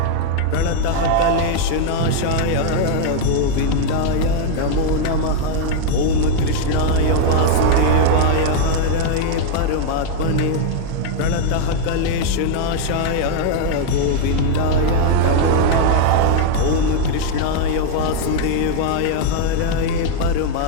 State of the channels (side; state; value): both; different; correlation 0.00